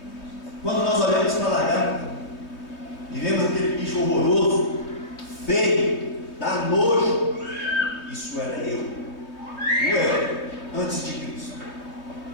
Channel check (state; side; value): late; right; 3.2 ms